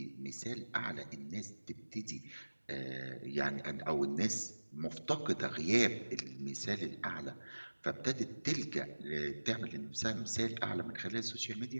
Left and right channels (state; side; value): inverted; both; correlation -1.00